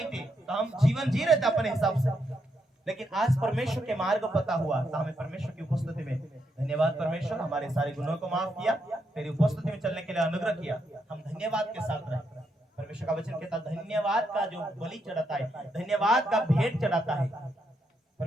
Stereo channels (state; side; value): normal; both; correlation 0.80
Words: थी तो हम जीवन जी रहे थे अपने हिसाब से, लेकिन आज परमेश्वर के मार्ग पता हुआ तो हमें परमेश्वर की उपस्थिति में धन्यवाद। परमेश्वर हमारे सारे गुनों को माफ किया, तेरी उपस्थिति में चलने के लिए अनुग्रह किया, हम धन्यवाद के साथ रहे। परमेश्वर का वचन कहता है धन्यवाद का जो बलि चढ़ाता है, धन्यवाद का भेंट चढ़ाता है,